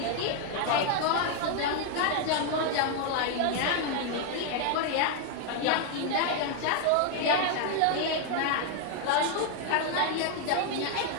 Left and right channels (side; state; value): both; different; correlation 0.00